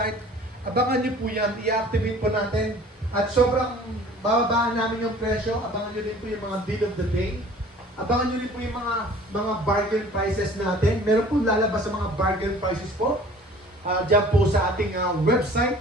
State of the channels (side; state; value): both; normal; correlation 0.48